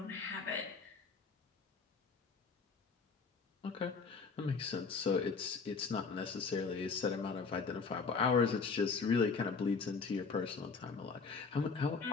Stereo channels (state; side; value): quieter; right; 5.0 dB